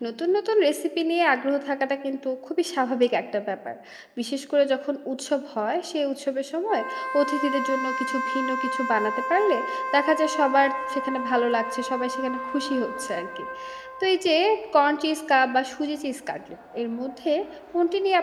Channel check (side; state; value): both; identical; correlation 1.00